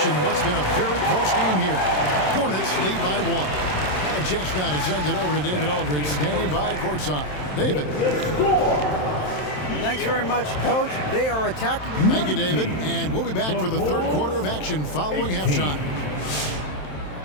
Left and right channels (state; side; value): late; right; 27 ms